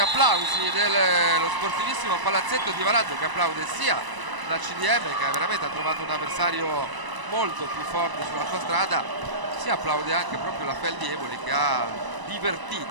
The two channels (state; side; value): late; left; 1.0 ms